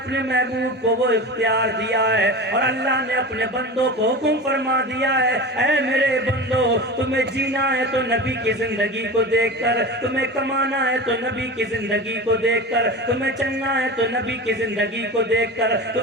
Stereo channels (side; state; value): both; normal; correlation 0.30